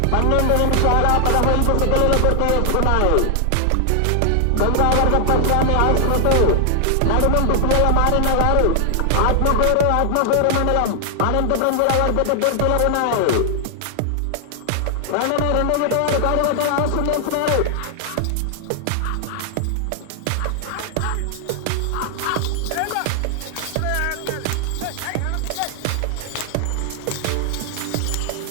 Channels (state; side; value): different; both; correlation 0.00